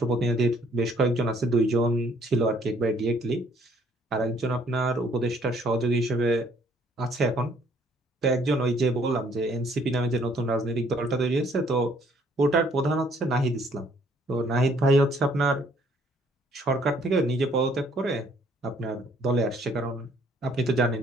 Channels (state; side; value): normal; both; correlation 0.63